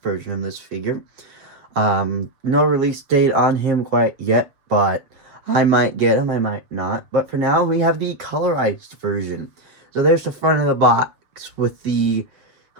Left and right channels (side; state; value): left; late; 6.9 ms